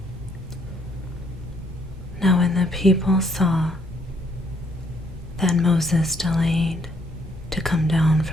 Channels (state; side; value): normal; both; correlation 0.68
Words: Now when the people saw that Moses delayed to come down